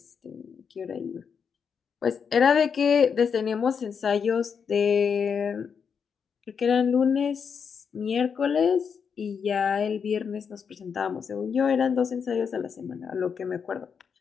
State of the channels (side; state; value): right; quieter; 6.6 dB